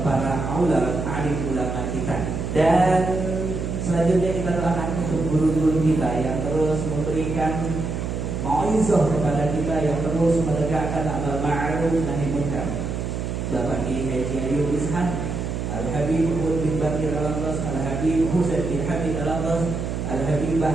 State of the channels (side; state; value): right; noise; hum, 3 dB below the sound